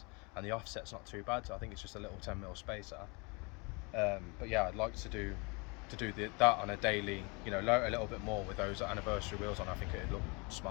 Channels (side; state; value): right; quieter; 30.0 dB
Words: and the offset's not too bad. So I think it's just a little 10mm spacer. But yeah, I'd like to do that on a daily, load a little bit more with those anniversary wheels on. I think it'd look